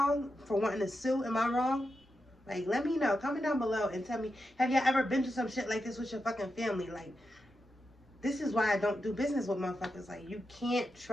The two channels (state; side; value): normal; both; correlation 0.88